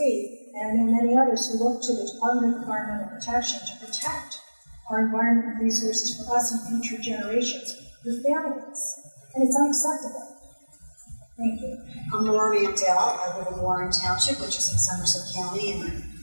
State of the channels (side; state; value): both; inverted; correlation -1.00